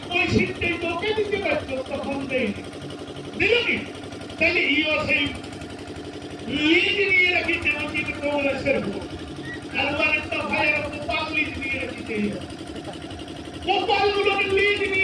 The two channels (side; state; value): both; identical; correlation 1.00